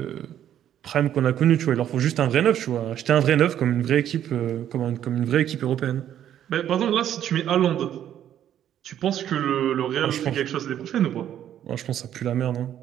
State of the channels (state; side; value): quieter; left; 10.7 dB